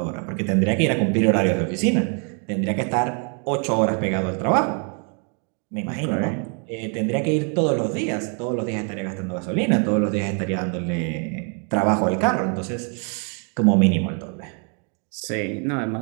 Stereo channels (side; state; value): left; quieter; 39.0 dB